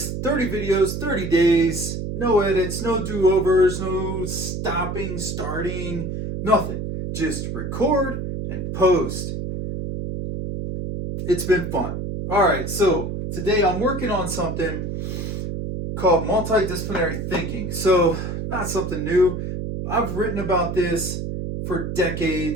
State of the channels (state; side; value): noise; right; hum, 4 dB below the sound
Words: 30 videos, 30 days, no edits, no do-overs, no stopping, starting, nothing. Just record and post. It's been fun. All right, so today I'm working on something called multidisciplinary thinking. So, not something new. I've written about this for